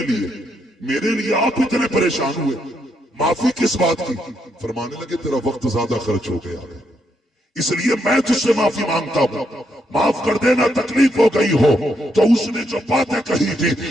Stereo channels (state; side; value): normal; both; correlation 0.78